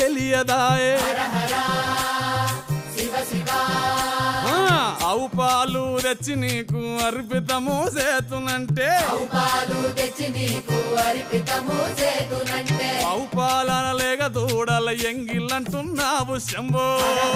హర హర శివ శివ ఆవు పాలు తెచ్చి నీకు అర్పితము చేతునంటే పాలు తెచ్చి నీకు అర్పితము చేతునంటే ఆవు పాలన లేక దూడల ఎంగిలంటున్నావు శంభో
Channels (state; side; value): identical; both; correlation 1.00